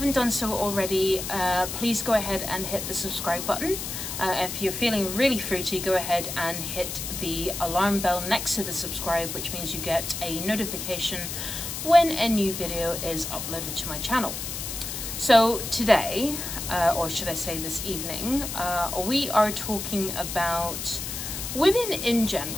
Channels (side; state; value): left; noise; hiss, 6 dB below the sound